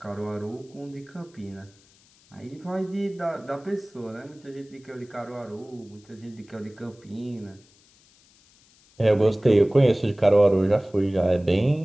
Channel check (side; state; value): left; noise; hiss, 30 dB below the sound